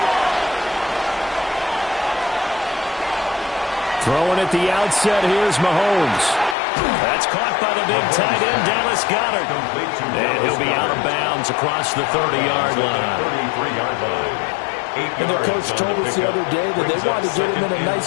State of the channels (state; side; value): drops out; right; at 6.6 s